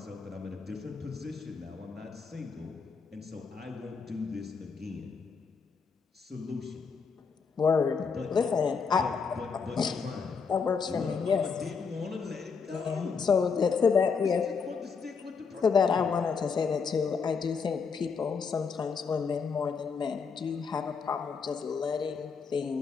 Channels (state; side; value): quieter; right; 5.5 dB